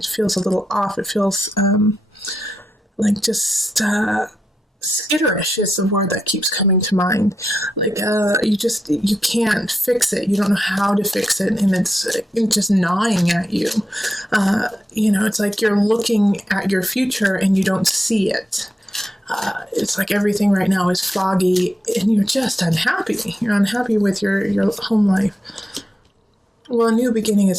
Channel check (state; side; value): normal; both; correlation 0.86